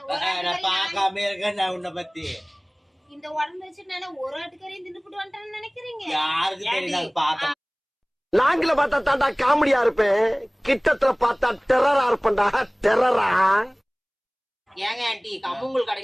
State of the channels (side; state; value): both; identical; correlation 1.00